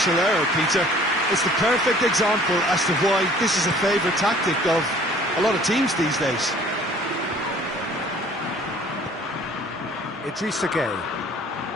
error, Peter. It's the perfect example as to why this is a favourite tactic of a lot of teams these days. Idrissa Gueye.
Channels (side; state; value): both; normal; correlation 0.53